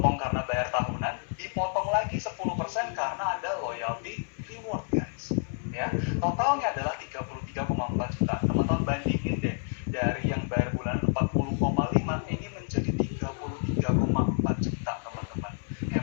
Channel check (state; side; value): silent; right; 58 dB below the other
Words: karena bayar tahunan, dipotong lagi 10% karena ada loyalty reward guys. Ya, totalnya adalah 33,4 juta. Teman-teman bandingin deh, dari yang bayar bulan 40,5 ini menjadi 33,4 juta teman-teman.